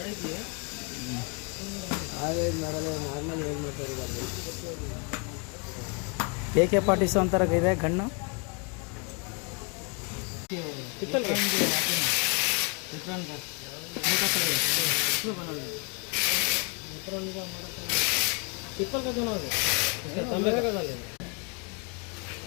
ಆ ವೆಲ್ಡ್ ಮಾಡಲ್ಲ, ನಾರ್ಮಲ್ ವೆಲ್ಡ್ ಮಾಡ್ತಾರೆ. AK-47 ಅಂತಾರ ಇದೆ ಗಣ್ಣು. पिपल का दोनों है, तंबे का डाले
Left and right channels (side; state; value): right; quieter; 34.3 dB